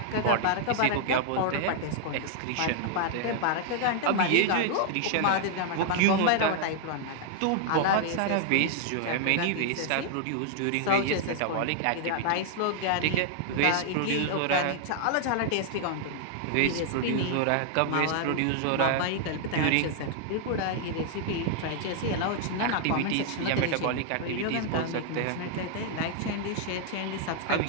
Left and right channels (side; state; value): both; different; correlation 0.00